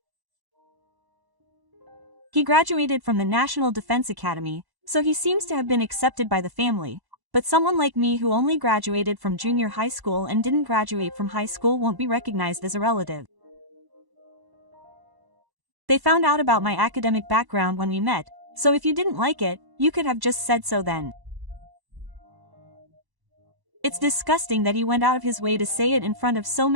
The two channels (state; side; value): late; left; 1.1 ms